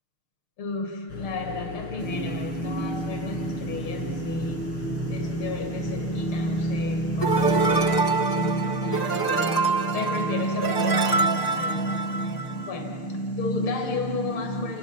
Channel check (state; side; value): late; right; 6.5 ms